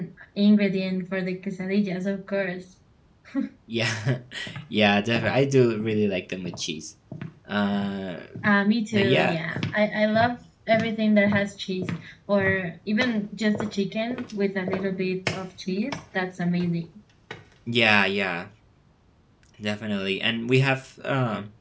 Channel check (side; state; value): both; identical; correlation 1.00